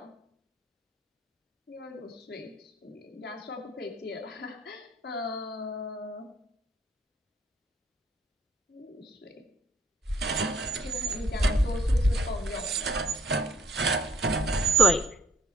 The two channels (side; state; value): both; normal; correlation 0.61